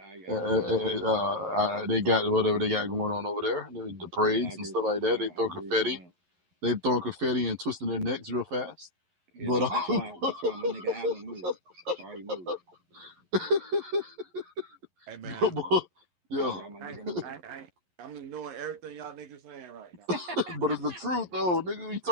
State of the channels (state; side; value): late; left; 11 ms